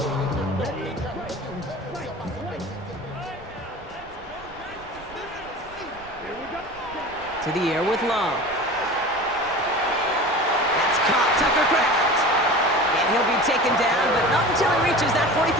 To the air with Love. That's caught, Tucker Kraft. And he'll be taken down, but not until he reaches that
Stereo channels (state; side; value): noise; right; rumble, 22 dB below the sound